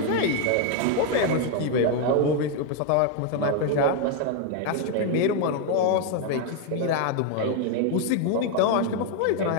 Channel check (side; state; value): both; different; correlation 0.01